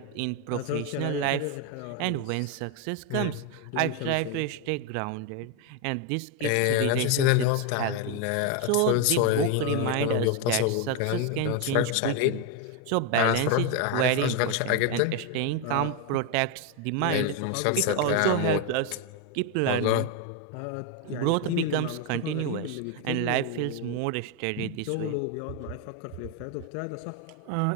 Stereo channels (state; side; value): different; both; correlation 0.02